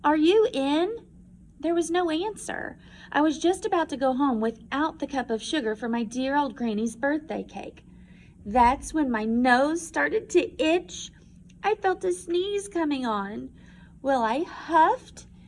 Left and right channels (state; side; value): identical; both; correlation 1.00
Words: are you in?" There was no answer. I was just about to go home without the cup of sugar for my dear old granny's birthday cake. That's when my nose started to itch. I felt a sneeze coming on. Well, I huffed